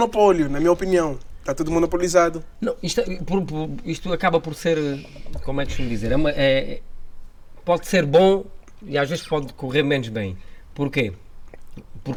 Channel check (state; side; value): identical; both; correlation 1.00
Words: na minha opinião. Está tudo monopolizado. Não, isto acaba por ser, como é que costumo dizer, pode ser bom e às vezes pode correr menos bem. Porquê?